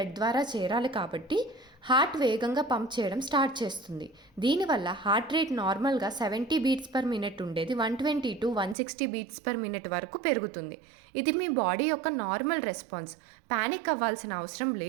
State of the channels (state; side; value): drops out; left; at 8.8 s